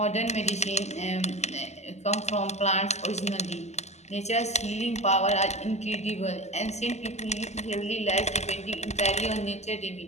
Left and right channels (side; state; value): right; late; 0.33 ms